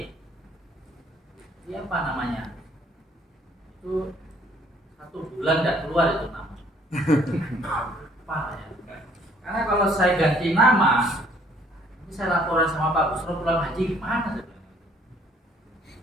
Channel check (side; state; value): both; normal; correlation 0.61